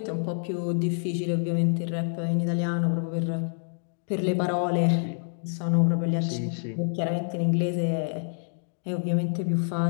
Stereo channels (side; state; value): right; silent; digital silence